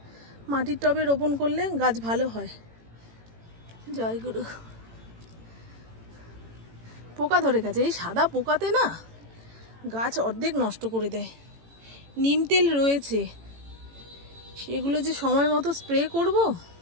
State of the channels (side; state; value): left; late; 18 ms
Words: মাটির টবে রোপণ করলে গাছ ভালো হয়। জয় গুরু। পোকা ধরে গেছে, এই সাদা পোকাতে না গাছ অর্ধেক নষ্ট করে দেয়। নিম তেল রয়েছে, সেগুলো যে সময় মতো স্প্রে করব